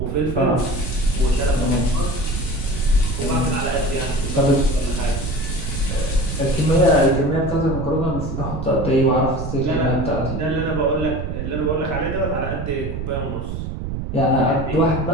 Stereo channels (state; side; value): noise; right; rumble, 5 dB below the sound